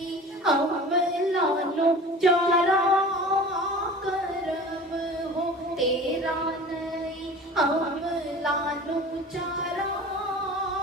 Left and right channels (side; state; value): both; normal; correlation 0.39